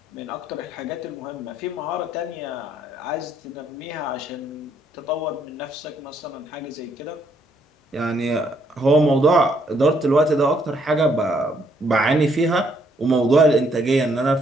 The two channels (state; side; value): normal; both; correlation 0.70